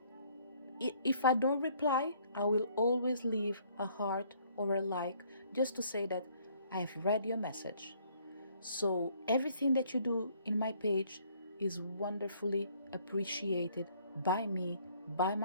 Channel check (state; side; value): inverted; both; correlation -0.63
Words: If I don't reply, I will always leave a heart or a like just to say that I have read your message. So everything that you do in my page is wonderfully appreciated by me, by